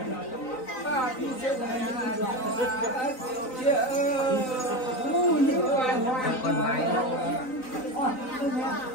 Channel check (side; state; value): right; late; 3.9 ms